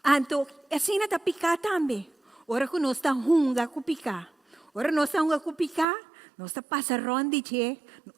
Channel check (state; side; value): drops out; left; at 5.9 s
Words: Anto, assim na picar também. Ora que nós está hunga com picar. Ora nós está hunga com picar, nós está passa ronde che,